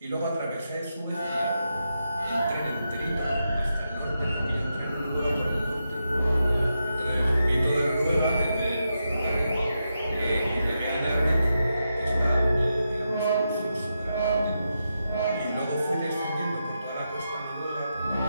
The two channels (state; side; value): inverted; both; correlation -0.86